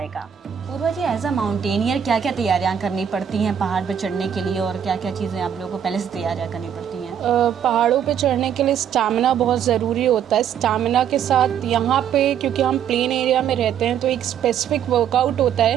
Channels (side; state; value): left; quieter; 8.8 dB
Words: पूर्वा जी, एज अ माउंटेनियर क्या क्या तैयारियाँ करनी पड़ती हैं पहाड़ पर चढ़ने के लिए, और क्या क्या चीज़ें आप लोगों को पहले से तैयारियाँ करनी पड़ती हैं? पहाड़ों पे चढ़ने के लिए स्टैमिना बहुत ज़रूरी होता है। स्टैमिना के साथ यहाँ पे क्योंकि हम प्लेन एरिया में रहते हैं, तो एक स्पेसिफिक वर्कआउट होता